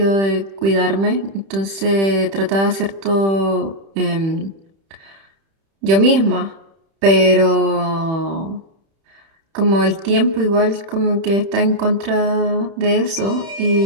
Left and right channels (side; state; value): left; late; 31 ms